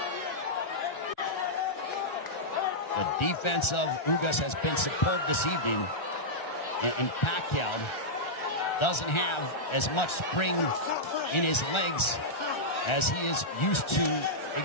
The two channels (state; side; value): late; right; 1.3 ms